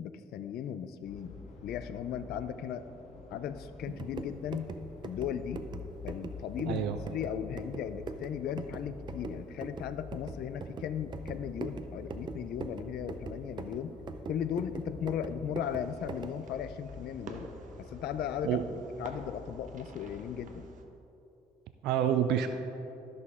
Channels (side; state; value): both; normal; correlation 0.42